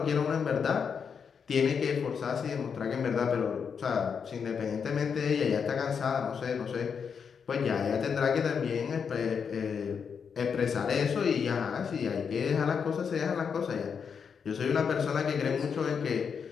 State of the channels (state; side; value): quieter; right; 6.5 dB